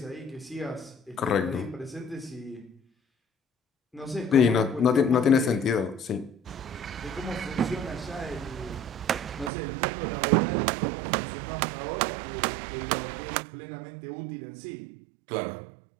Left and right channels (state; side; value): drops out; left; at 9.5 s